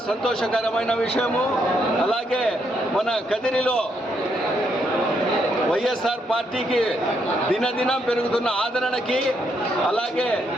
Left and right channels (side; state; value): both; normal; correlation 0.76